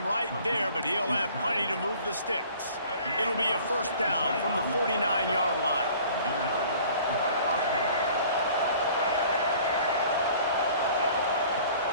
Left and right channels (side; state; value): both; inverted; correlation -0.51